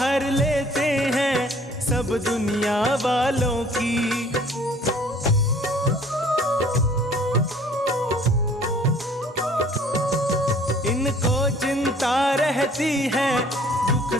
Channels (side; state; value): both; normal; correlation 0.55